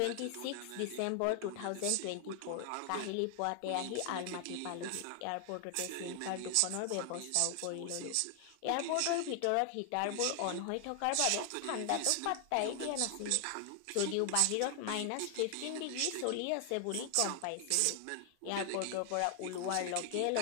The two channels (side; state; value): both; different; correlation 0.00